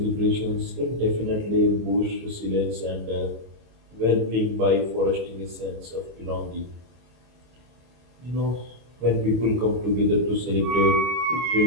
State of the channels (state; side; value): late; left; 25 ms